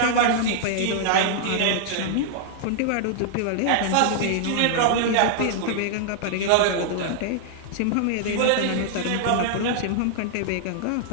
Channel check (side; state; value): both; different; correlation -0.01